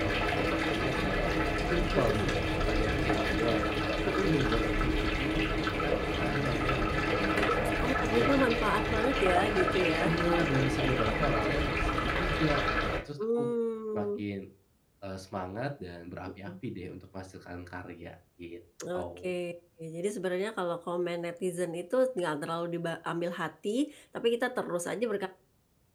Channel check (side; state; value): both; identical; correlation 1.00